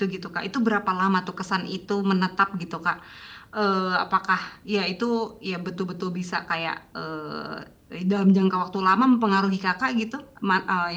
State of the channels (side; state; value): both; identical; correlation 1.00